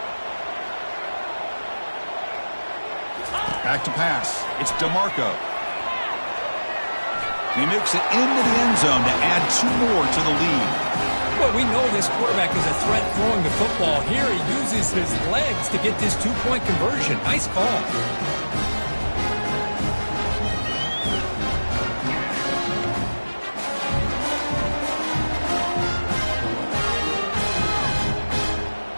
Back to pass. It's DeMarco. He makes it into the end zone to add 2 more to the lead. Well, we know this quarterback is a threat throwing the football. Here he uses his legs to get this 2-point conversion. Nice call.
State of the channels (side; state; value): both; inverted; correlation -1.00